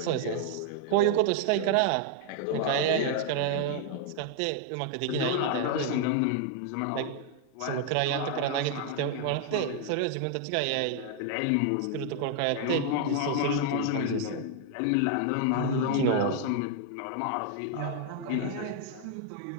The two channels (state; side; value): different; both; correlation 0.00